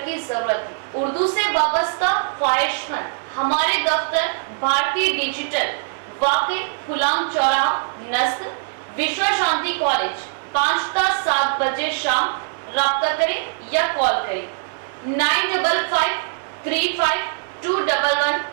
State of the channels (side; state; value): left; silent; digital silence